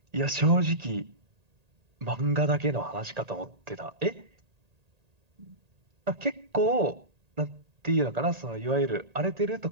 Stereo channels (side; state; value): left; late; 1.8 ms